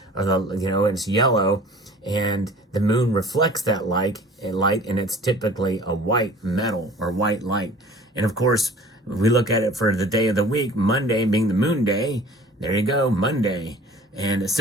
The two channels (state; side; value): normal; both; correlation 0.46